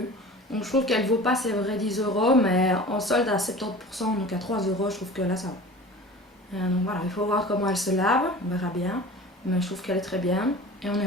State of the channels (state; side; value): normal; both; correlation 0.39